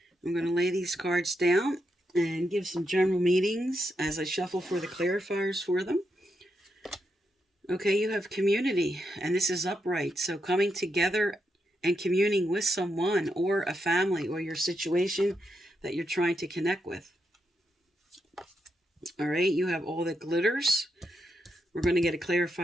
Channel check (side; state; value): both; normal; correlation 0.83